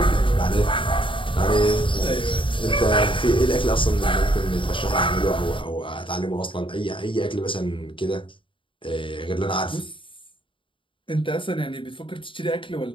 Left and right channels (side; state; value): right; late; 0.25 ms